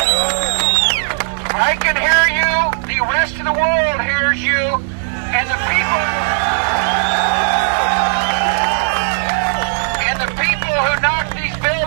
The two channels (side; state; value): left; silent; digital silence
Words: I can hear you. The rest of the world hears you. And the people who knock these